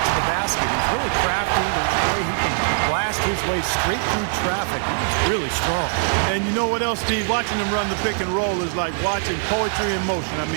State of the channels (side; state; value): left; silent; 64 dB below the other